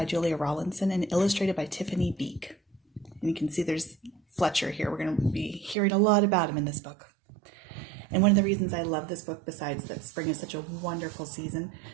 Julia Rawlinson and illustrated by Tiffany Beek. And you can see there's Fletcher here. We're going to be hearing a lot about him in this book. And one of the reasons I love this book, besides that spring is such a wonderful season,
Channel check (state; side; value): drops out; left; at 5.8 s